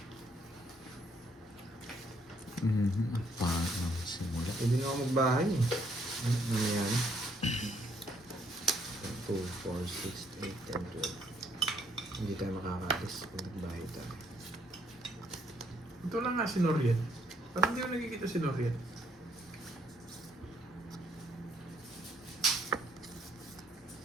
Paano simula? Pwede na ako magbahay eh. Ano yan? 2, 4, 6, 8, 10, 12. Hindi tayo makakalis kung nagbahay tayo. Ito lang nga si Noriel. Parang hindi ko nakikita si Noriel.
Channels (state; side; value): normal; both; correlation 0.69